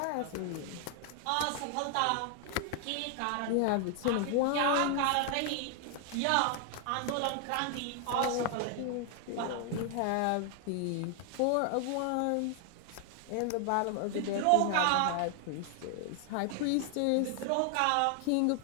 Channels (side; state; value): both; different; correlation 0.00